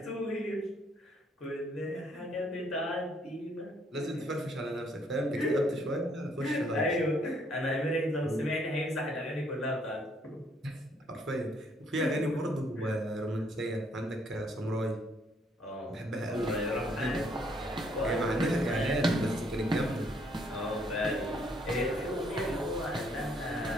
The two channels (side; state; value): both; normal; correlation 0.67